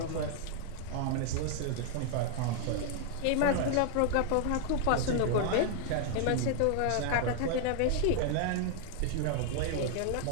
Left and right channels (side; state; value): both; different; correlation 0.00